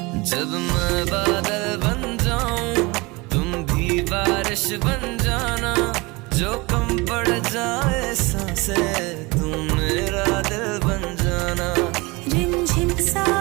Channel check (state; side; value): quieter; left; 24.7 dB